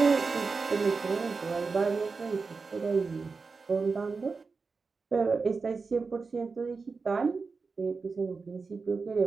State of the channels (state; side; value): quieter; left; 4.5 dB